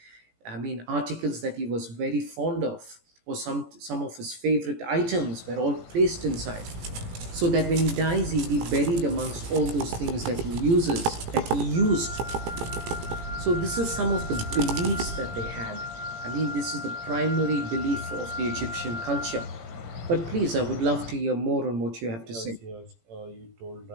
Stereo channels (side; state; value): left; late; 18 ms